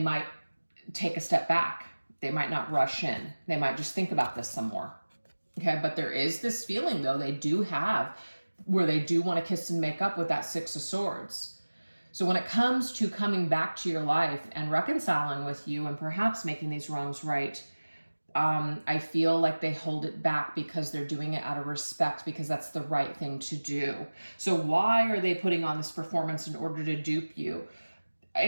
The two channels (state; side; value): inverted; both; correlation -1.00